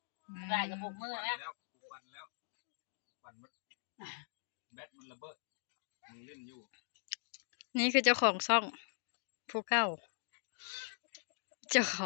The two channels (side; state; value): right; silent; digital silence